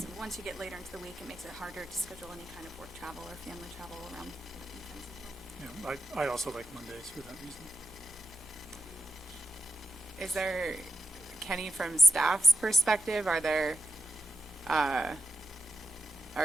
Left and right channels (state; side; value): normal; both; correlation 0.89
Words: once you get later into the week, it makes it harder to schedule any kind of work travel or family travel around weekends as well. Yeah, I also like Mondays for that reason. Is there, Kenny, from staff's perspective, are there